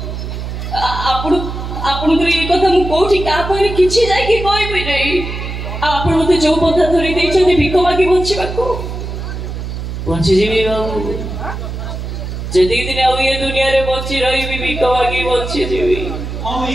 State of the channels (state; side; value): noise; right; hum, 6 dB below the sound